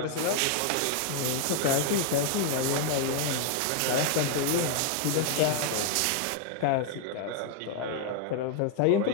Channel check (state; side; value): different; both; correlation 0.00